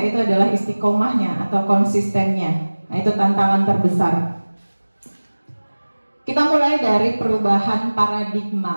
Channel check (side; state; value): both; inverted; correlation -1.00